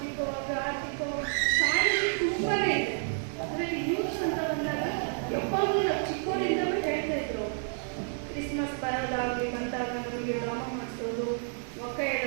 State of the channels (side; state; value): left; silent; 58 dB below the other